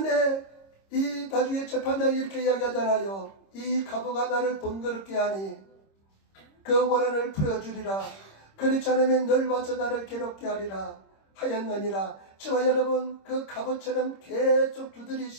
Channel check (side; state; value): right; late; 26 ms